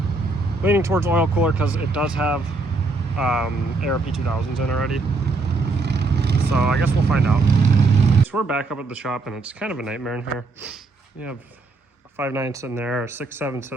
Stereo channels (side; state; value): left; quieter; 3.5 dB